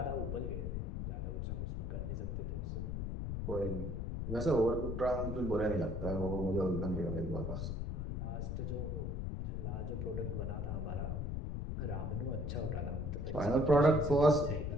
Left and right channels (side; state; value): left; noise; rumble, 2 dB below the sound